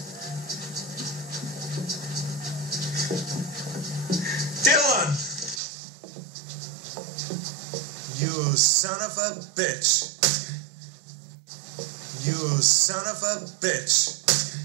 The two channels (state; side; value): drops out; left; at 5.6 s